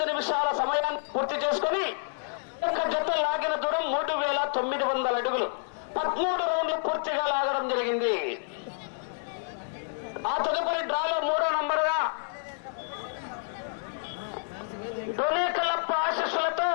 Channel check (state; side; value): silent; right; 59 dB below the other